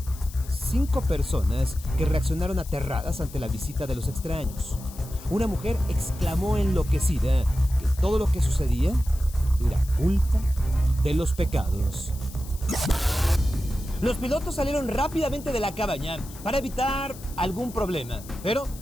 5 personas que reaccionaron aterradas ante la visita de los extraños. Una mujer exclamó enloquecida que todo lo que sucedía era culpa de los pecados. Los pilotos salieron rápidamente de la cabaña para evitar algún problema, pero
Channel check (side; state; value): left; noise; hiss, 18 dB below the sound